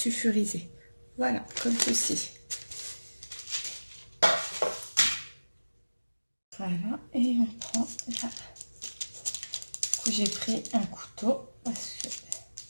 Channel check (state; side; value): inverted; both; correlation -1.00